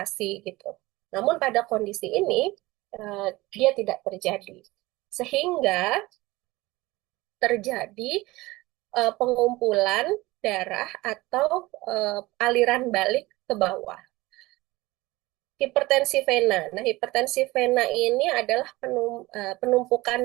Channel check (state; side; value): quieter; left; 20.3 dB